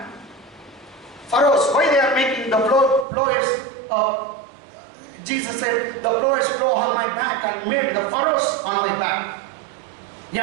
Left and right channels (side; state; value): left; drops out; at 3.1 s